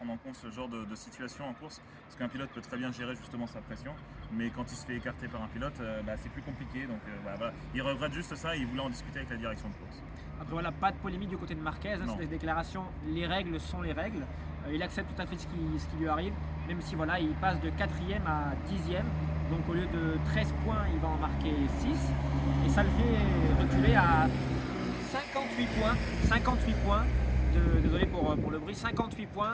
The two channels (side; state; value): both; identical; correlation 1.00